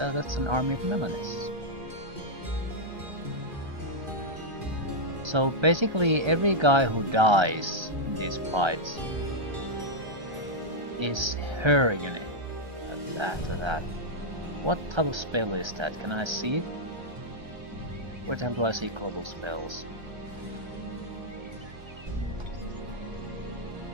an army of Melanis. So basically every guy who dies in these fights is her unit after that. What type of spell is that? Can I see it? Where the hell do I see global spells?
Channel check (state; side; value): late; left; 1.3 ms